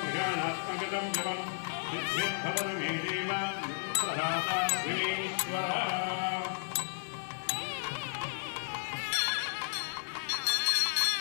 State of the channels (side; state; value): right; silent; digital silence